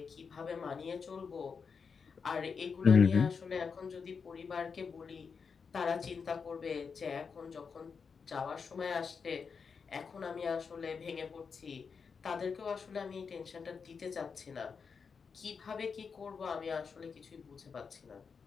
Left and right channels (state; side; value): quieter; right; 5.7 dB